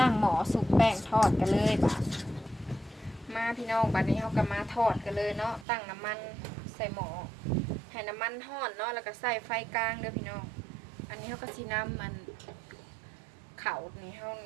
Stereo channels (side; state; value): left; drops out; at 5.7 s